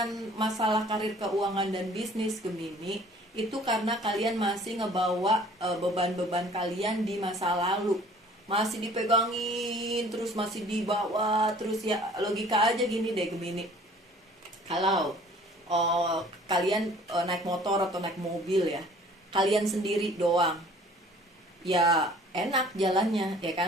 masalah karir, keuangan, dan bisnis Gemini, itu karena kalian masih ngebawa beban-beban kalian di masa lalu. Masih dipegangin, terus masih dibawa, terus ya logika aja gini deh Gemini. Kalau kalian naik motor atau naik mobil ya, kalian sendiri doang, ya enak jalannya ya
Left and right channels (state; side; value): normal; both; correlation 0.52